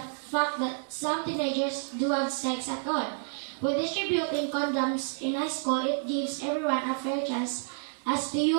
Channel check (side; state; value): left; silent; 58 dB below the other